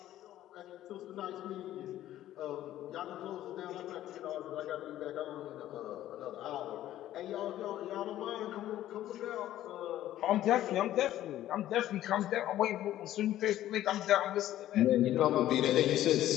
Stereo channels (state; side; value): quieter; right; 13.2 dB